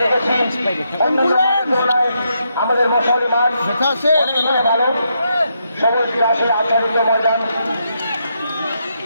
দেখেছি আমাদের মশালি মাঠ দেখা আছে ভালো সবুজ ঘাসে আচ্ছাদিত ময়দান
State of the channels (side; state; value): both; inverted; correlation -0.80